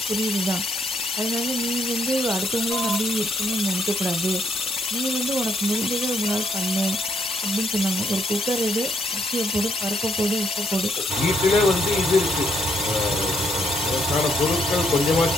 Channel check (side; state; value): both; normal; correlation 0.73